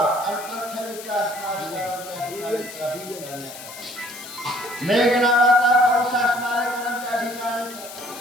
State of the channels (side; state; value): left; noise; hiss, 14 dB below the sound